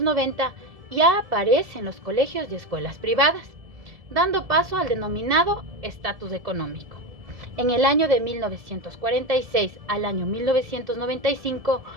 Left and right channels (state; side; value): late; left; 1.7 ms